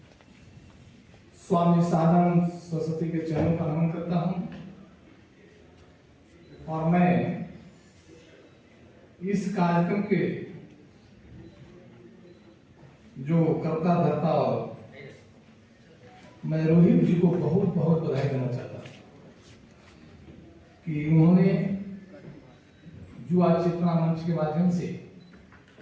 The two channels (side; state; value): both; identical; correlation 1.00